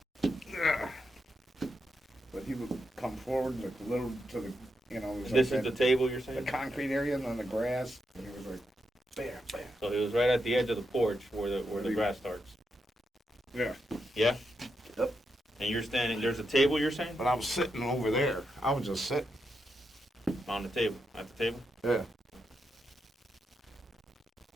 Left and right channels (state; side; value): normal; both; correlation 0.84